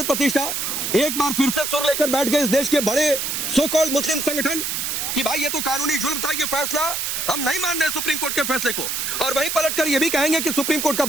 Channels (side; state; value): right; noise; hiss, 2 dB below the sound